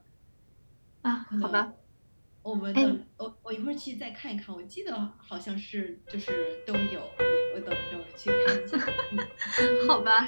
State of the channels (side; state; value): both; inverted; correlation -1.00